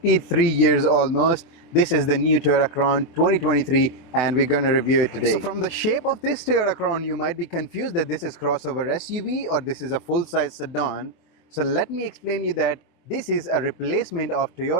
years almost. This is the new Toyota Crown 2023, and we're going to review it today. So from the shape of this Toyota Crown, you might be confused that this is crossover SUV or this is a full-size sedan. So let me explain you that this is a replacement of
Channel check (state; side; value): late; right; 24 ms